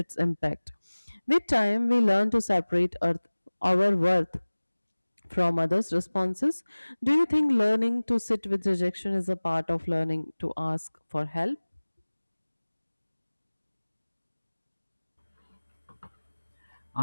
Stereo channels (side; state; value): both; inverted; correlation -1.00